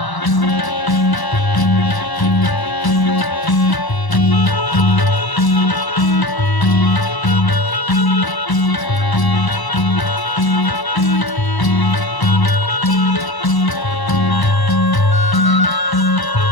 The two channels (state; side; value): late; right; 1.0 ms